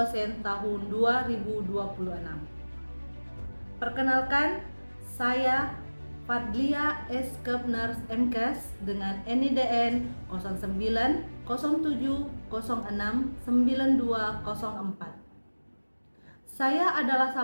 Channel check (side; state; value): both; inverted; correlation -1.00